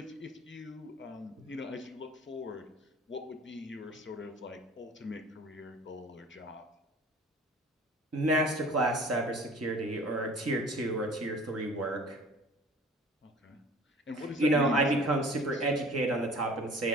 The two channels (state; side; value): normal; both; correlation 0.46